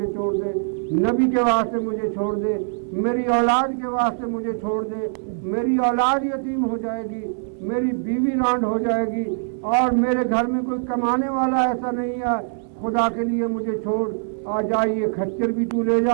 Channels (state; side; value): silent; left; 63 dB below the other